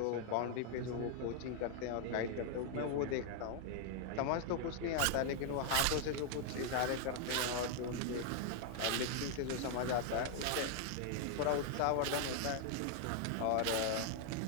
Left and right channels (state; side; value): different; both; correlation 0.00